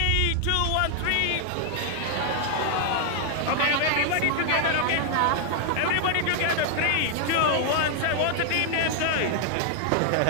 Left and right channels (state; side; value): different; both; correlation 0.00